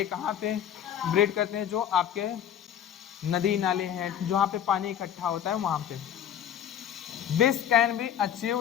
कहाँ पे ब्रीड करते हैं, जो आपके नदी नाले हैं जहाँ पे पानी इकट्ठा होता है वहाँ पे। This can be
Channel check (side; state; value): right; quieter; 9.6 dB